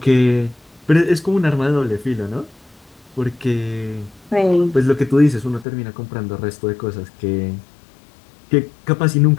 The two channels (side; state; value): right; drops out; at 5.7 s